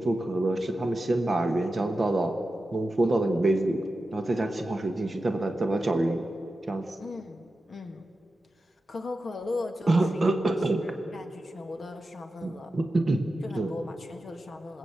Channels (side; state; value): both; normal; correlation 0.92